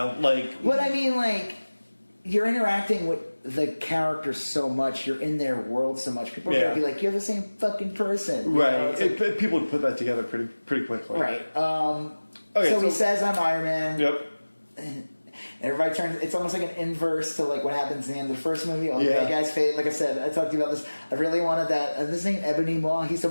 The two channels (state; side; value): inverted; both; correlation -1.00